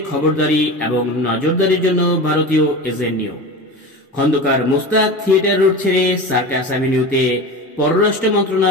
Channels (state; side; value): normal; both; correlation 0.29